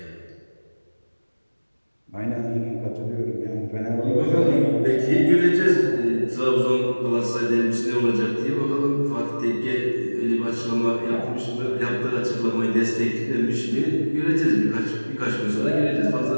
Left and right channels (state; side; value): inverted; both; correlation -1.00